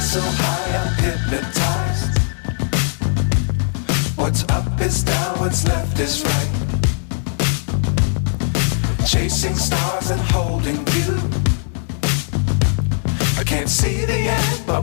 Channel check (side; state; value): right; silent; 62 dB below the other